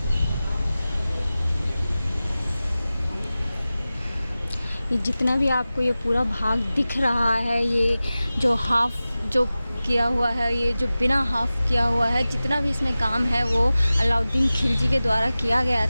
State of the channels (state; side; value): inverted; both; correlation -0.96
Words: ये जितना भी आपको ये पूरा भाग दिख रहा है, ये जो हाफ जो किया हुआ है, ये जो बिना हाफ किया हुआ है, जितना भी इसमें काम है वो अलाउद्दीन खिलजी के द्वारा किया गया